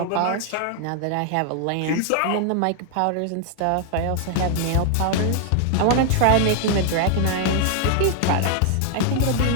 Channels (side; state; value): both; different; correlation 0.00